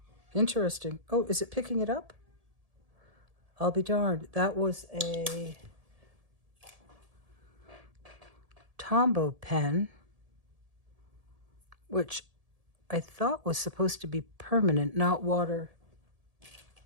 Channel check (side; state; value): left; late; 1.7 ms